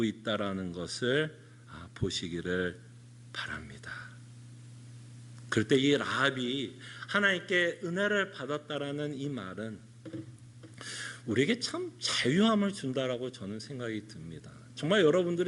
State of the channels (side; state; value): both; identical; correlation 1.00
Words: 있다라는 것을 보시기를 바랍니다. 그럴 때 이 라합이 하나님께 은혜를 받았다라는 이 말은 우리에게 참 자유함을 준다라고 저는 생각이 듭니다. 정말